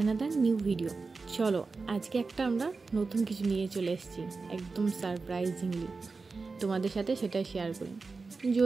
new video. চলো আজকে একটা আমরা নতুন কিছু নিয়ে চলে এসেছি, একদম সারপ্রাইজিংলি তোমাদের সাথে সেটাই শেয়ার করি।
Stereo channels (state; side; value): quieter; left; 4.2 dB